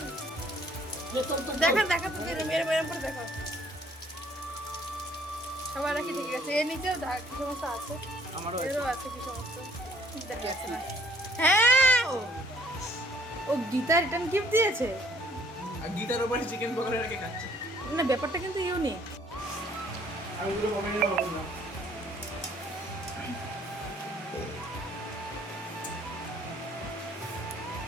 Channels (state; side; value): normal; both; correlation 0.61